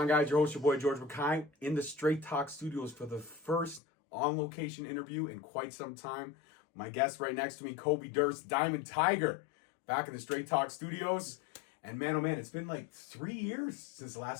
guys? Your host, your boy George McKay, in the Straight Talk Studios for the first on-location interview in quite some time. My guest right next to me, Kobe Durst, Diamond Tiger, back in the Straight Talk Studios. And man, oh man, it's been like 3 years since the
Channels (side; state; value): right; drops out; at 3.8 s